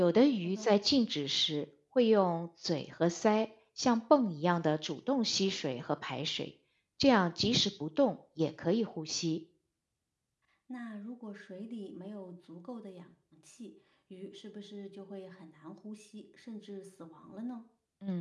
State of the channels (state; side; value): identical; both; correlation 1.00